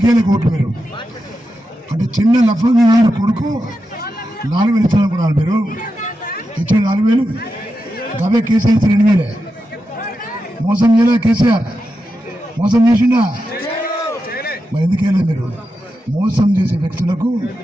కోట్లు మీరు అంటే చిన్న లఫంగా కొడుకు 4,000 ఇస్తాననుకున్నారు మీరు. ఇచ్చిన 4,000 గవే కేసీఆర్ 2,000. మోసం చేయలే కేసీఆర్, మోసం చేసిండా? మరి ఎందుకేలే మీరు? మోసం చేసే వ్యక్తులకు,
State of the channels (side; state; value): both; normal; correlation 0.89